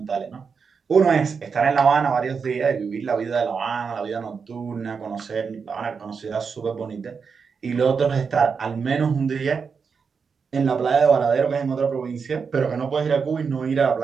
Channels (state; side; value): quieter; left; 5.7 dB